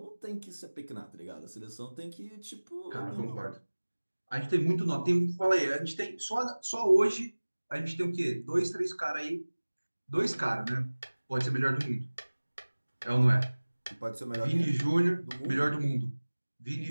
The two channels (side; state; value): both; inverted; correlation -1.00